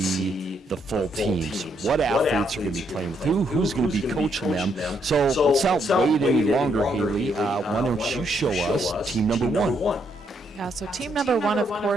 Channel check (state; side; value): normal; both; correlation 0.75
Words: the full teams. What athletes are going to be playing with who's going to be coaching them. So let's not wait any longer, Haley. Why don't you show us team number 1? Yeah, so team number 1, of